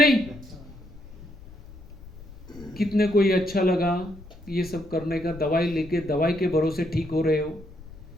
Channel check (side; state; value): left; noise; rumble, 18 dB below the sound